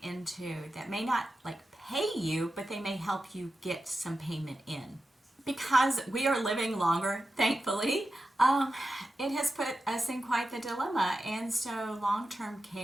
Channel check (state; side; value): normal; both; correlation 0.92